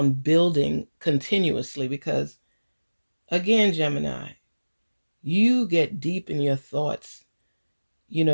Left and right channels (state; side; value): inverted; both; correlation -1.00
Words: building continuously, because again, Gemini, you get deep in your thoughts.